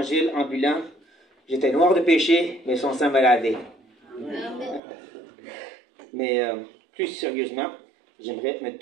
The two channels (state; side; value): drops out; left; at 4.8 s